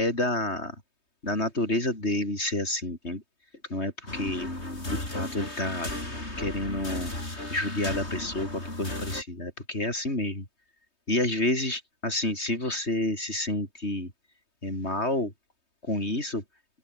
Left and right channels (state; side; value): late; right; 3.2 ms